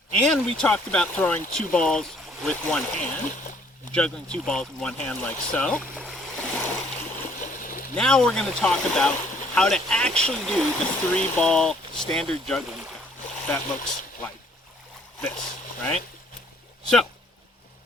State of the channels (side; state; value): both; normal; correlation 0.61